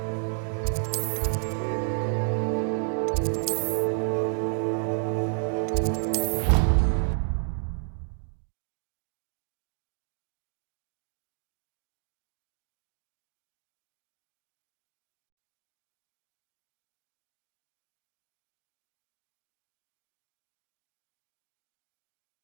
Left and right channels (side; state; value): left; silent; digital silence